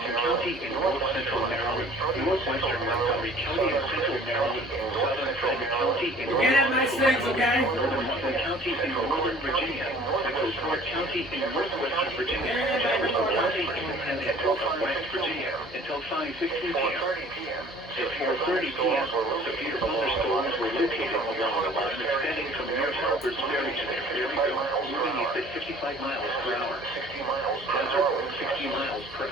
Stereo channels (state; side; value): normal; both; correlation 0.50